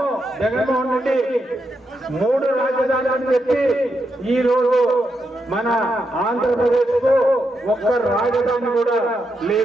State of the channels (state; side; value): normal; both; correlation 0.83